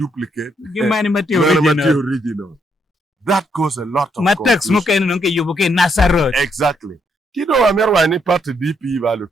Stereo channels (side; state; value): both; normal; correlation 0.75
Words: Many mati original. That caused a lot of Matex muke nunke yubuke Nasarot. Exactly. Kido amerwa ni party DP